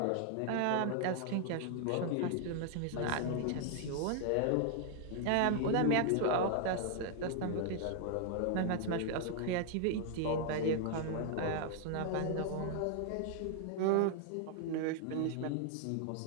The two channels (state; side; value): different; both; correlation -0.01